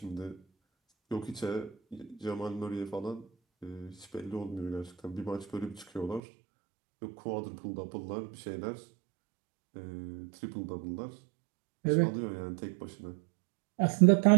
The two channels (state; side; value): drops out; left; at 6.2 s